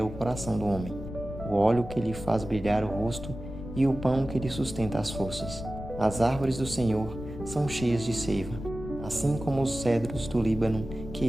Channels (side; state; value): left; noise; rumble, 10 dB below the sound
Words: o coração do homem, o óleo que lhe faz brilhar o rosto e o pão que lhe sustenta as forças. As árvores do Senhor são cheias de seiva, assim como os cedros do Líbano que